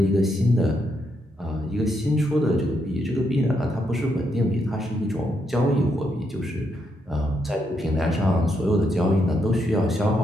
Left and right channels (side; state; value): both; normal; correlation 0.79